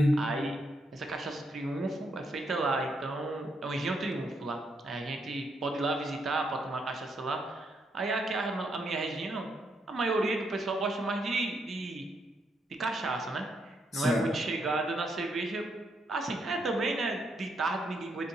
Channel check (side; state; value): both; normal; correlation 0.77